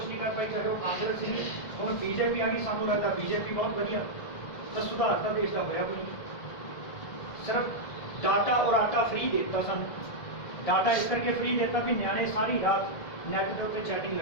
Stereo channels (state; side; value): late; right; 1.8 ms